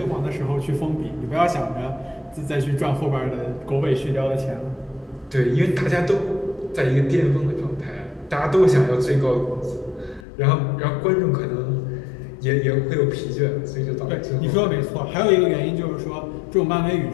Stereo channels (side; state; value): right; drops out; at 10.2 s